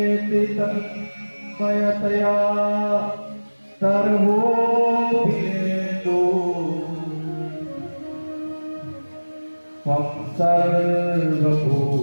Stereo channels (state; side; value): inverted; both; correlation -1.00